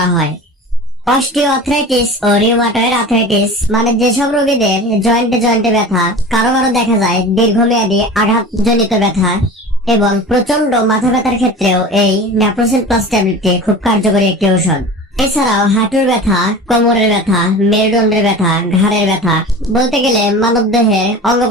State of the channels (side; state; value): both; normal; correlation 0.35